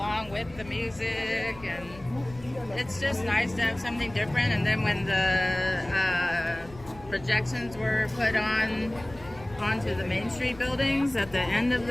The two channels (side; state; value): left; noise; rumble, 19 dB below the sound